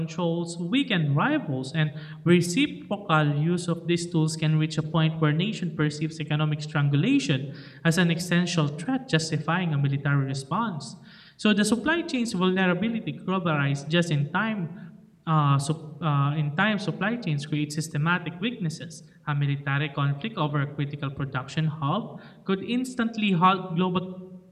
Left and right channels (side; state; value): both; identical; correlation 1.00